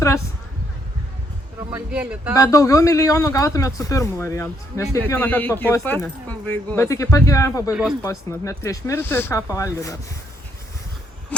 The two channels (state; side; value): normal; both; correlation 0.72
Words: Bet daugiau milijonų gautumėt su pirmu variantu, nes kiekvieną kartą papostinė. Bet iki pat gyvenimo pabaigos postinat, net prieš mirtį, ką pavalgė dar.